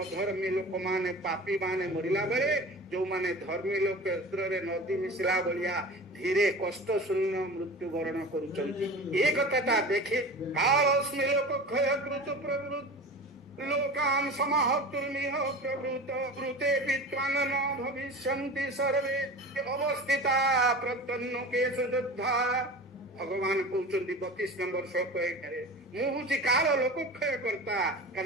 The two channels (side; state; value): both; normal; correlation 0.34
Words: ଅଧର୍ମୀ ଲୋକମାନେ, ପାପୀ ମାନେ ମରିଲା ବେଳେ ଯୋଉମାନେ ଧର୍ମୀ ଲୋକ କ୍ଷେତ୍ରରେ ନଦୀ ମିଶିଲା ଭଳିଆ ଧୀରେ କଷ୍ଟ ଶୂନ୍ୟ ମୃତ୍ୟୁ ବରଣ କରୁଛନ୍ତି। ଏ କଥାଟା ଦେଖି କାଳସ୍ମି ଲୋକ କ୍ଷୟ କୃତ ପ୍ରବୃତ୍ତି ଲୋକାନ୍ ସମାହର୍ତ୍ତୁର୍ମିହ ପ୍ରବୃତ ବୃତେ ବିତ୍ୱାନ ନ ଭବିଷ୍ୟନ୍ତି ସର୍ବେ ଅବସ୍ଥିତା ପ୍ରତ୍ୟନ୍ନକେଷୁ ଯୋଦ୍ଧା। ଭଗବାନ କହୁଛନ୍ତି 32 ନମ୍ବର ଶ୍ଲୋକ 1ରେ, ମୁଁ ହଉଛି କାଳ ଲୋକକ୍ଷୟ କର୍ତ୍ତା।